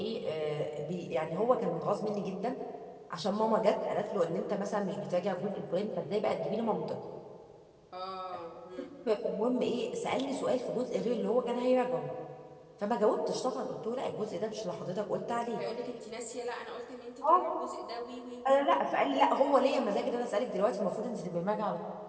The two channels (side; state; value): both; identical; correlation 1.00